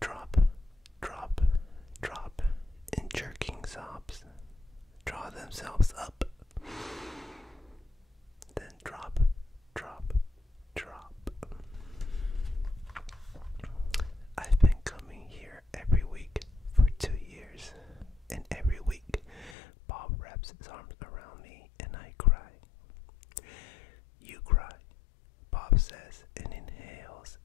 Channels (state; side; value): drops out; right; at 19.6 s